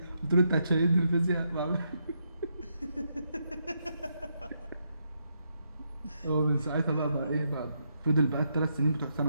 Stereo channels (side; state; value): both; inverted; correlation -0.80